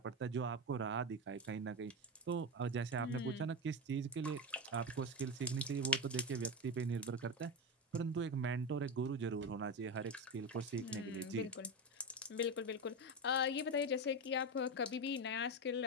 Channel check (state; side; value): normal; both; correlation 0.16